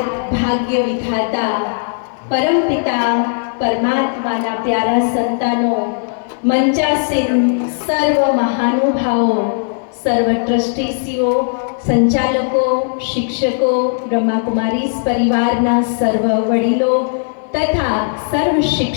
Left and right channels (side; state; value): right; silent; digital silence